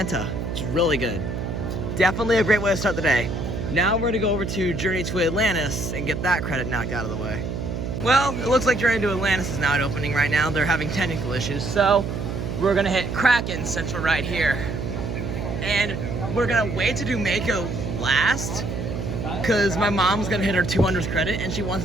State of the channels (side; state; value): right; noise; hum, 4 dB below the sound